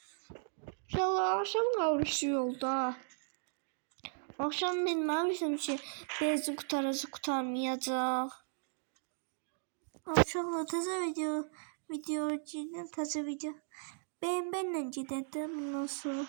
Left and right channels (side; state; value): left; silent; digital silence